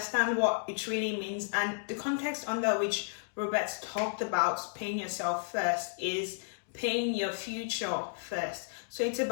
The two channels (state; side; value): silent; right; digital silence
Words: what it really means, and the context under which Robert talked about paying yourself first is paying your future first. So it's